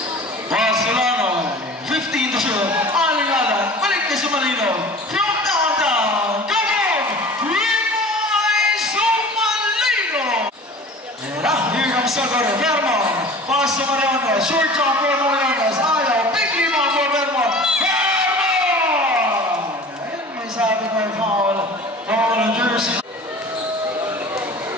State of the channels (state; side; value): normal; both; correlation 0.41